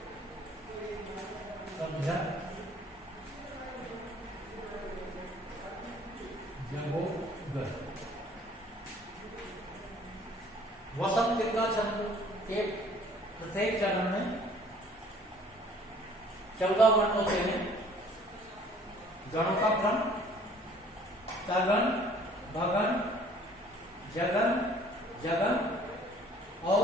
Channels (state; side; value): normal; both; correlation 0.55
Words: वसंत का छंद के प्रत्येक चरण में 14 वर्ण होते हैं। गणों का क्रम तगन, भगन, जगन, जगन